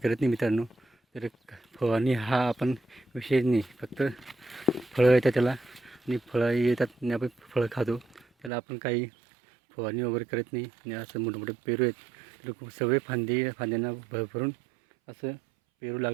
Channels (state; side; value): drops out; left; at 8.5 s